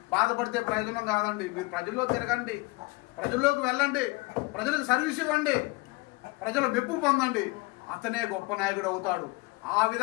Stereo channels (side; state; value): right; quieter; 25.1 dB